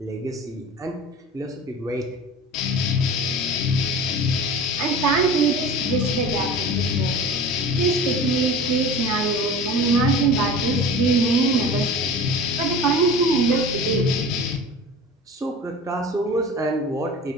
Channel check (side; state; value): both; normal; correlation 0.37